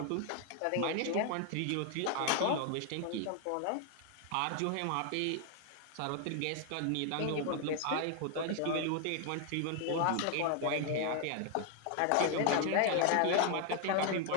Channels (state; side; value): different; both; correlation 0.00